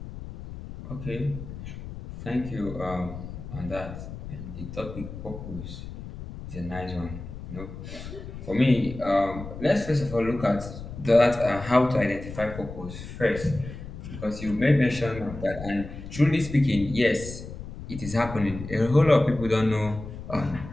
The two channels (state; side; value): noise; left; rumble, 11 dB below the sound